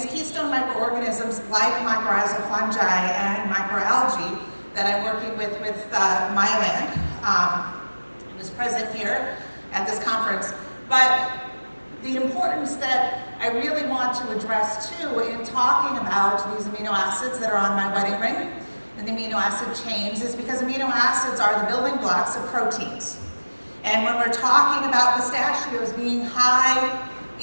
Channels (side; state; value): both; inverted; correlation -1.00